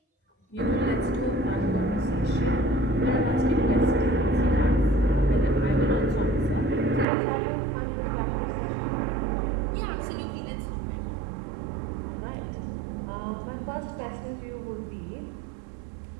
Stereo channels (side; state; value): left; drops out; at 7.1 s